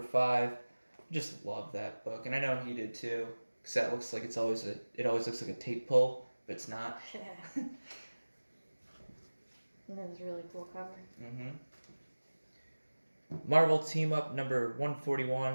Just love that book, and I know he did too. Because that looks like it always looks like a tape pull, but it's not. Yeah. That was a really cool cover. Marvel Team Up number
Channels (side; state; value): both; inverted; correlation -1.00